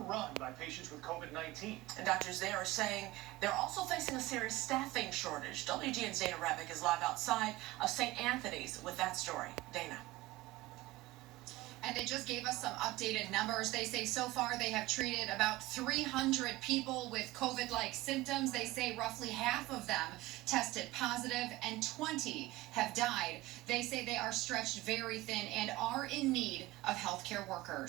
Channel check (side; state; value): left; quieter; 18.2 dB